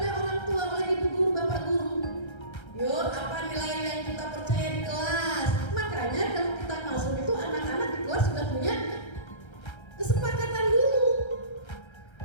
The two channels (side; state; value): right; late; 1.3 ms